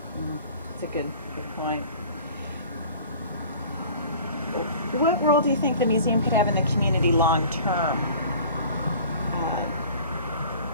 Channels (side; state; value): both; inverted; correlation -0.45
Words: It's a good point. What role do you think the museum could have in the community long term?